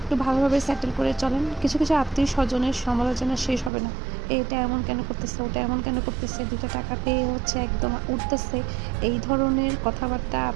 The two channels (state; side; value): drops out; left; at 3.7 s